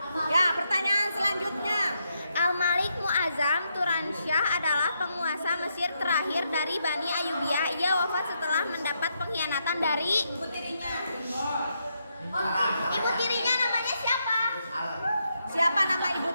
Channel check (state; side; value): inverted; both; correlation -0.80